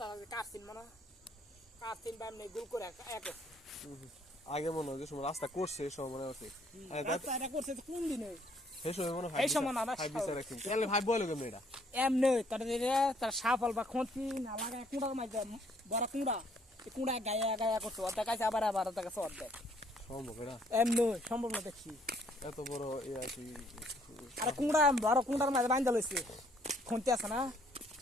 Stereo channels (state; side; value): normal; both; correlation 0.65